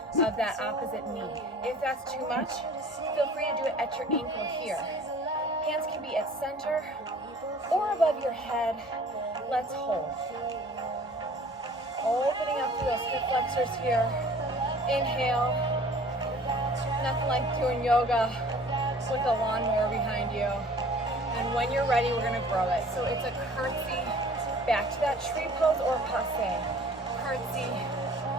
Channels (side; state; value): both; normal; correlation 0.49